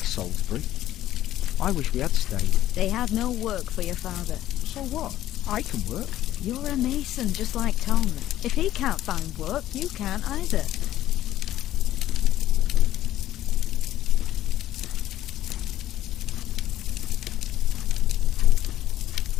I wish we had stayed. They have no work for your father. So what? I can work. You're a mason, just like Tom. If he can't find work, you can't either.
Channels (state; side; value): quieter; right; 13.4 dB